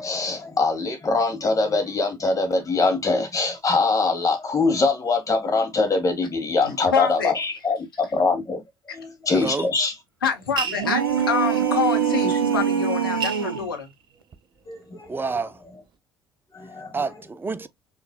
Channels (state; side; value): normal; both; correlation 0.41